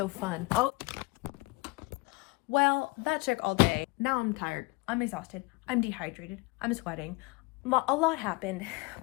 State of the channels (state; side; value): quieter; right; 25.2 dB